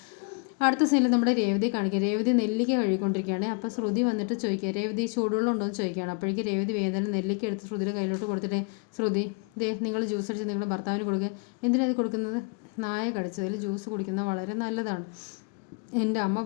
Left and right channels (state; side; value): quieter; right; 33.7 dB